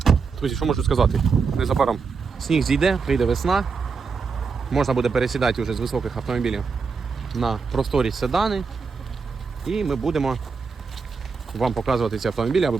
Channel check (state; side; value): quieter; left; 5.1 dB